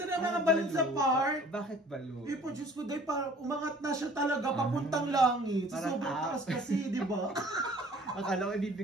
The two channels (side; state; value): both; normal; correlation 0.51